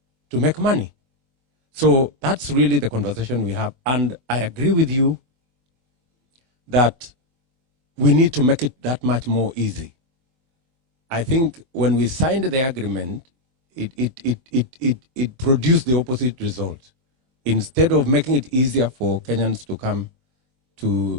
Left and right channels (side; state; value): left; late; 24 ms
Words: to make money. So that's really the conversation we have. And I agree with you that we need to make it that much more easy. I think when we signed the agreement, it produced the opposite result. Instead of making it easier for Kenyans to come